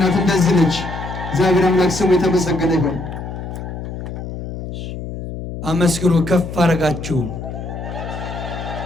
እንደዚህ ነች። እግዚአብሔር አምላክ ስሙ የተመሰገነ ይሁን። አመስግኑ፣ ከፍ አረጋችሁ።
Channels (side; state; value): left; noise; hum, 8 dB below the sound